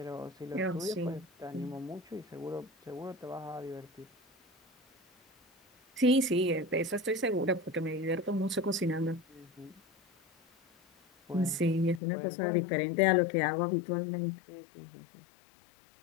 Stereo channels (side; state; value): right; drops out; at 12.0 s